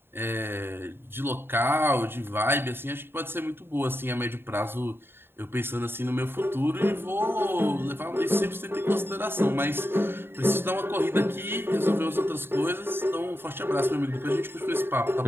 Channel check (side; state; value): left; late; 0.11 ms